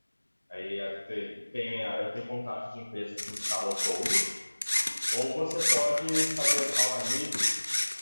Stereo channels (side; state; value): both; inverted; correlation -1.00